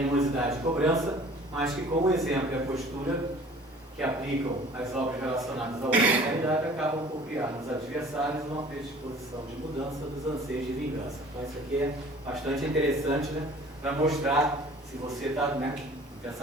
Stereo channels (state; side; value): normal; both; correlation 0.49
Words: e cobrança, mas que com o exemplo e a postura que aplicam as obras relacionadas à humanidade acabam por criar nos adversários uma predisposição de mudança dos anseios de vingança. Então isso aqui é bastante interessante, né, para mostrar se você está, né, com